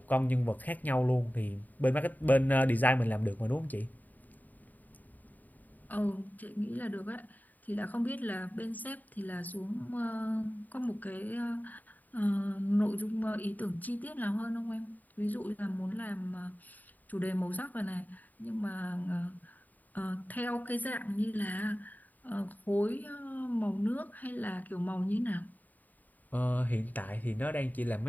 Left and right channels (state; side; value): late; right; 0.084 ms